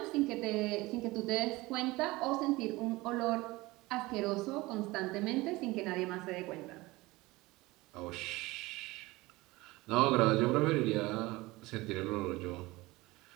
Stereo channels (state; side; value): quieter; left; 20.9 dB